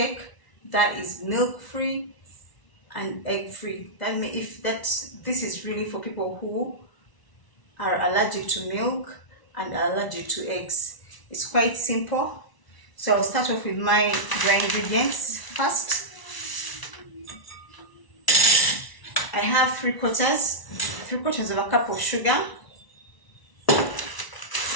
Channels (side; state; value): right; late; 1.0 ms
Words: that is milk free and egg free. This is really for people who are allergic to milk and are allergic to eggs. It's quite simple. So I'll start off with my dry ingredients first. I have three quarters of a cup of sugar.